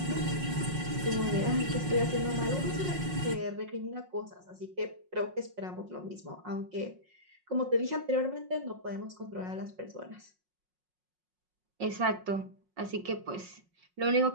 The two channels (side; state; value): left; late; 5.5 ms